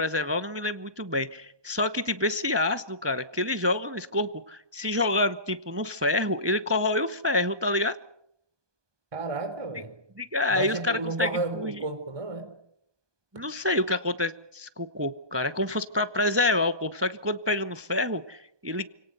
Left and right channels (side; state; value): left; late; 1.2 ms